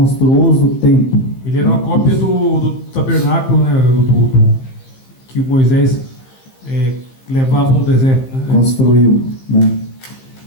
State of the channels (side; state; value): right; late; 15 ms